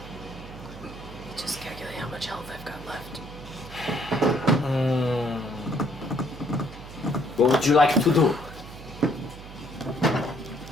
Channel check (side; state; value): right; noise; hum, 15 dB below the sound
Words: Just calculate how much health I've got left. What would you like to do?